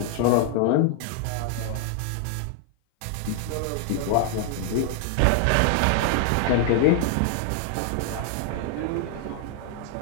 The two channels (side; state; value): both; different; correlation 0.00